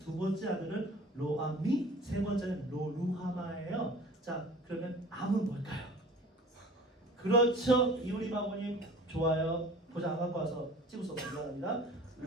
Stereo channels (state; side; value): normal; both; correlation 0.44